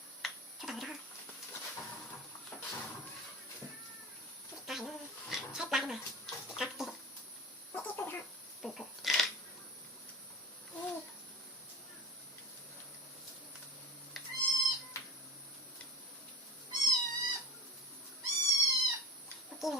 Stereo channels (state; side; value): normal; both; correlation 0.31